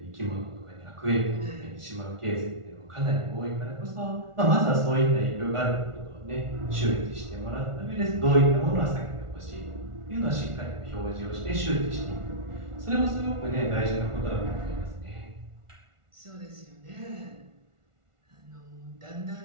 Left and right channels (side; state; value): left; late; 1.4 ms